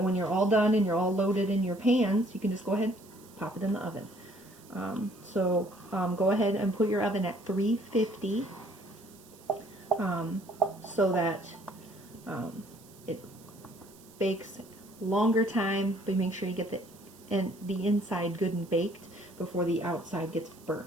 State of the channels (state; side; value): noise; right; hiss, 24 dB below the sound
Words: when you're all done and you're all loaded in your pans, you can just go ahead and pop it in the oven. Go ahead and put your oven at 350 so that it bakes longer time, but make sure you get the inside good and baked before the outside gets